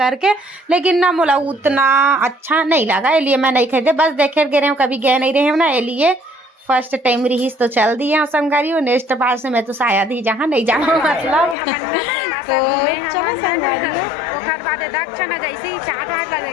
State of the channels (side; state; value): right; drops out; at 11.6 s